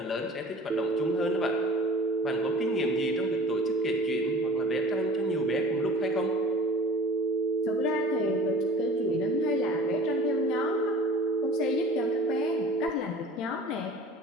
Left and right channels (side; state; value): both; normal; correlation 0.43